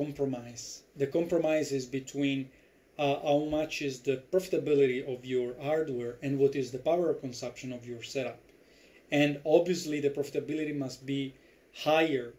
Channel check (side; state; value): both; identical; correlation 1.00